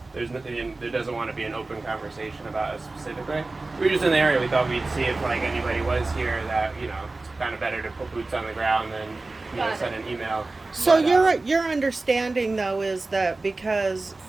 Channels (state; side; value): quieter; left; 3.3 dB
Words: doesn't want to be an open conversation about it specifically. We were just in the area. We thought we'd see if like anybody was here that it's kind of better to put boots on the ground than Got send it. an email. So But, your understanding though is that because